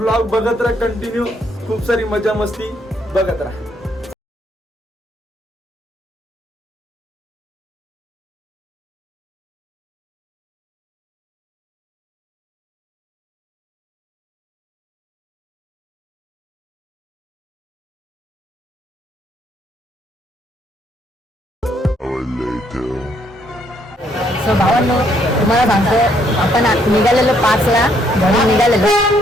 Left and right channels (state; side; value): normal; both; correlation 0.70